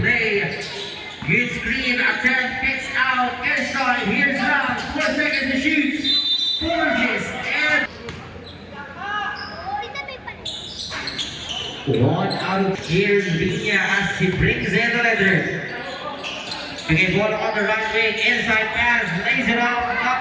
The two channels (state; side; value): identical; both; correlation 1.00